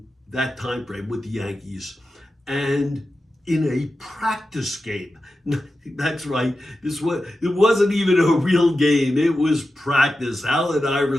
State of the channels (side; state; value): both; normal; correlation 0.92